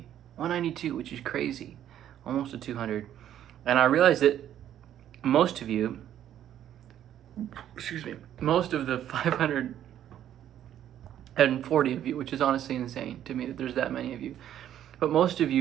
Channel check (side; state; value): left; quieter; 11.0 dB